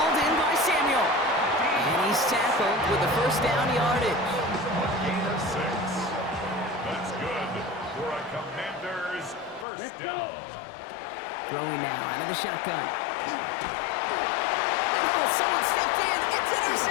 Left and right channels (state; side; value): drops out; right; at 9.7 s